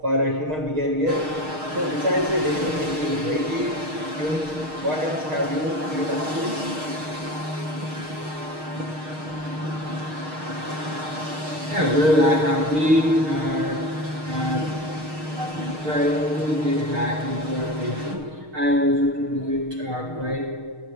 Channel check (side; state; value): left; late; 6.5 ms